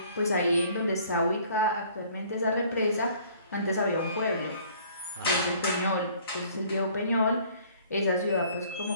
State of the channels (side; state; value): both; inverted; correlation -0.56